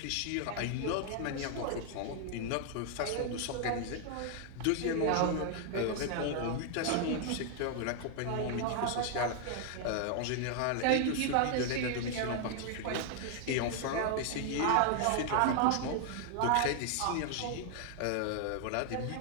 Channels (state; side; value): different; both; correlation 0.00